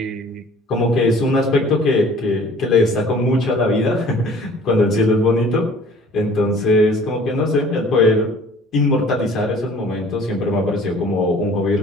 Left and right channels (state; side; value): normal; both; correlation 0.50